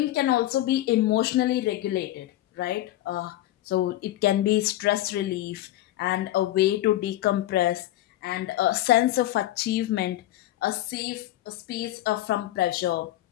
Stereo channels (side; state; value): right; quieter; 14.7 dB